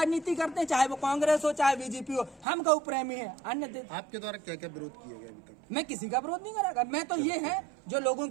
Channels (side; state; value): left; drops out; at 2.5 s